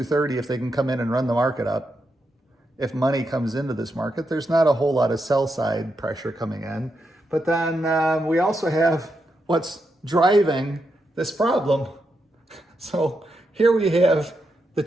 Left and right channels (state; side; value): normal; both; correlation 0.84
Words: if they can come in and run the market up. If money comes into this market, there's not a whole lot of sell side pressure coming in. But then we also have what's driving this problem. So here we have the